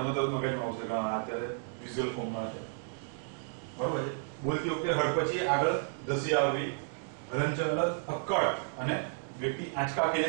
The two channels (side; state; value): left; silent; 56 dB below the other